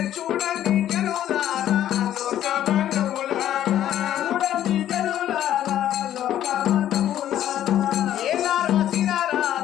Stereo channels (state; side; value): quieter; right; 11.7 dB